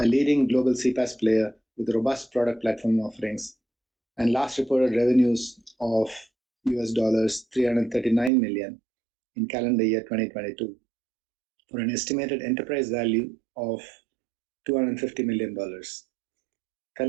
leading global CPaaS player with robust product platform offerings, and last reported revenues of US dollars 339 million in calendar year 2022 for an estimated enterprise value of $250 million.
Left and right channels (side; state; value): left; drops out; at 8.3 s